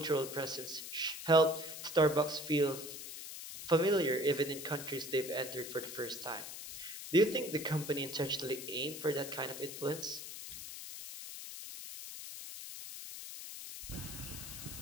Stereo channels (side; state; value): left; noise; hiss, 9 dB below the sound